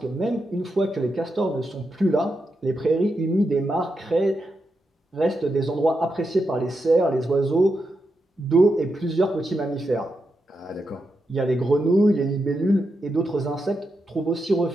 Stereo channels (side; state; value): both; normal; correlation 0.86